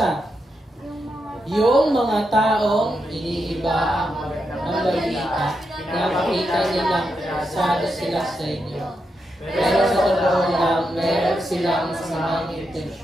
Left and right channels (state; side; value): normal; both; correlation 0.85